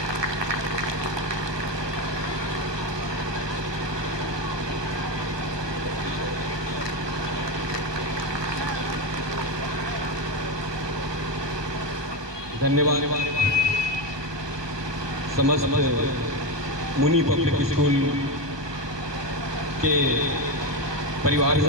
धन्यवाद समस्त मुनि public school के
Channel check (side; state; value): left; late; 1.2 ms